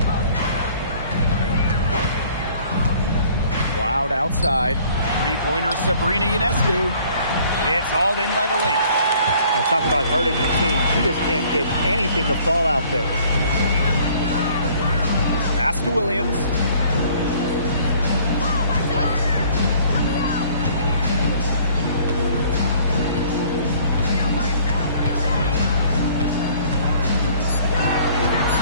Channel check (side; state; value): both; inverted; correlation -0.56